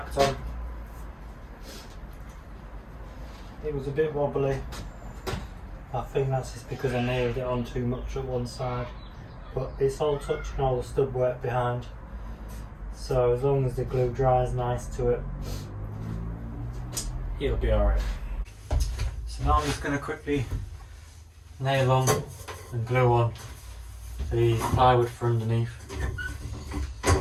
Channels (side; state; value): both; identical; correlation 1.00